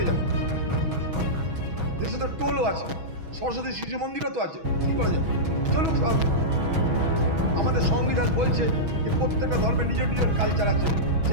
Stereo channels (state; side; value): late; left; 6.2 ms